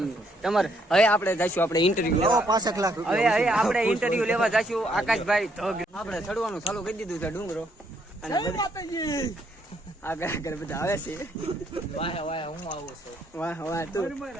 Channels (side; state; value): both; normal; correlation 0.71